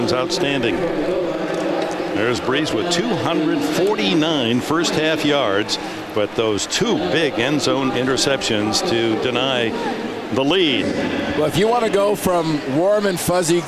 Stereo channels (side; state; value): both; identical; correlation 1.00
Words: outstanding. There's Brees with 249 first half yards, but those 2 big end zone interceptions to deny the lead. Well, if you want to go from warm and fuzzy